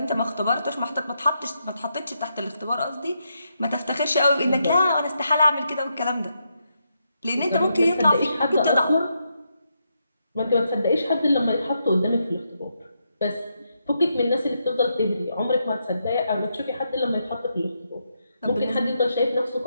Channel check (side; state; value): both; inverted; correlation -0.81